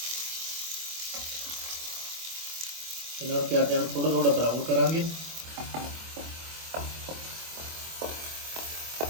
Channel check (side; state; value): left; late; 24 ms